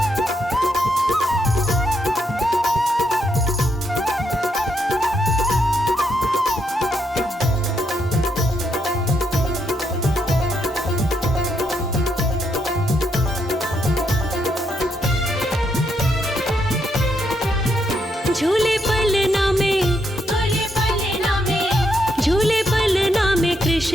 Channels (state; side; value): normal; both; correlation 0.78